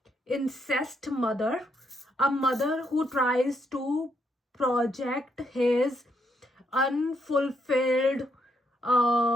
incest mother, a mother who tries to project his unfulfilled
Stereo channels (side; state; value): both; normal; correlation 0.76